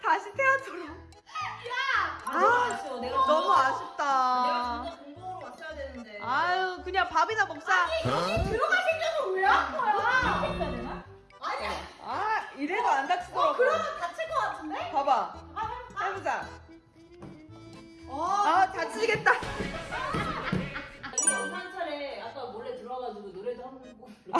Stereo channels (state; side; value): identical; both; correlation 1.00